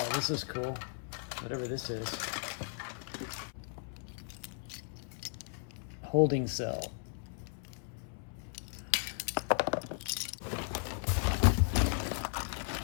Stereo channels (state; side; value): silent; right; 54 dB below the other